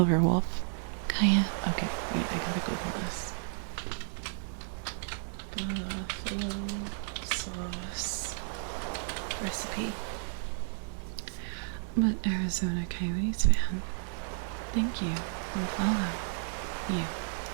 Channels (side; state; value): left; silent; digital silence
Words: Kaya. Okay, wait, I gotta Google this. Buffalo sauce recipe. But Arizona Coyotes fan, thank you for the follow. You